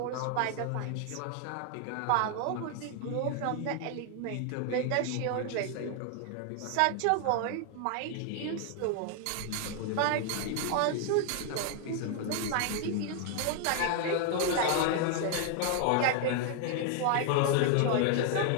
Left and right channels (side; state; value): both; different; correlation 0.00